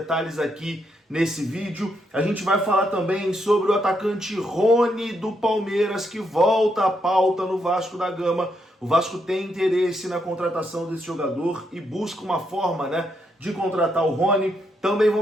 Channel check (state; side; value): normal; both; correlation 0.78